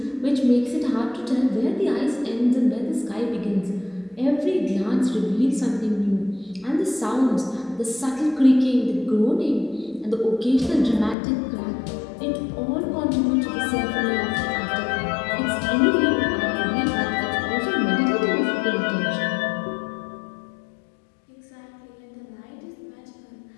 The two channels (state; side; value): drops out; right; at 11.2 s